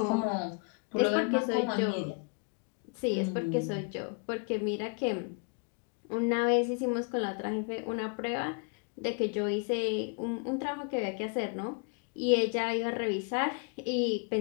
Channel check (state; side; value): quieter; right; 36.0 dB